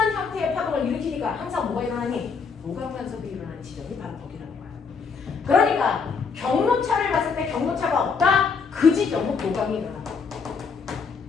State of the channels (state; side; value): quieter; right; 5.4 dB